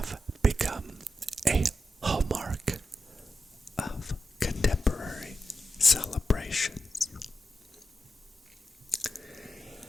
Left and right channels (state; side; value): normal; both; correlation 0.88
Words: become a hallmark of contemporary celebrations.